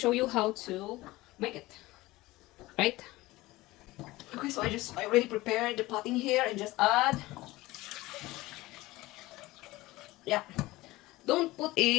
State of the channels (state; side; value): quieter; right; 19.1 dB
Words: you how to make it. Right? Okay, so I already prepared the potting here and just add. Yeah. Don't put